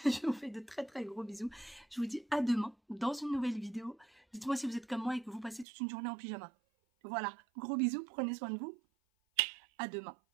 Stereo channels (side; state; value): left; drops out; at 5.7 s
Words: Je vous fais de très gros bisous. Je vous dis à demain dans une nouvelle vidéo. Dites-moi si vous êtes comme moi et que vous passez toute une journée en pyjama. Voilà, gros bisous, prenez soin de vous. À demain.